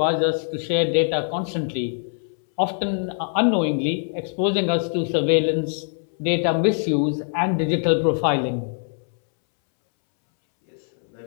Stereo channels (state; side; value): silent; right; 63 dB below the other